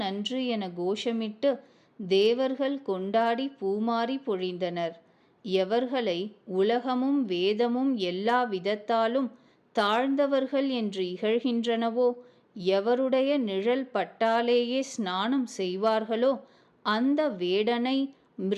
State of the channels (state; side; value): identical; both; correlation 1.00